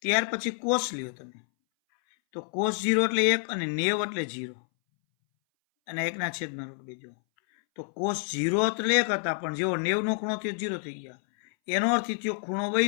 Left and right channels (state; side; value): silent; right; 59 dB below the other